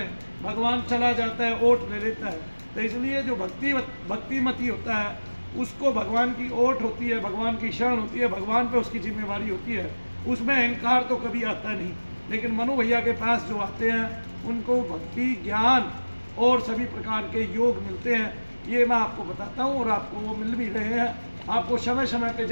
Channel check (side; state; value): both; inverted; correlation -1.00